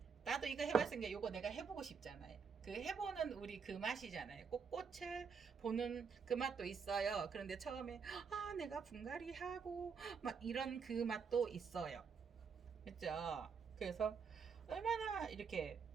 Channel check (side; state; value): left; quieter; 6.0 dB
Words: 나도 이거 해봤으니까 이거 내가 해보고 싶잖아요. 그 해보는 우리 그 맛이잖아요. 꼭 꽃을 보는 그 맛도 있어요. 그런데 처음에 내가 분갈이 하고 막 이런 그 맛도 있어요. 그죠? 그래서 얼마나 이렇게